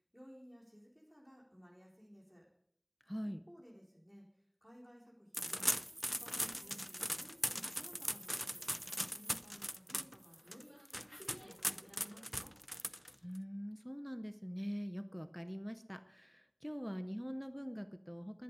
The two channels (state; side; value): identical; both; correlation 1.00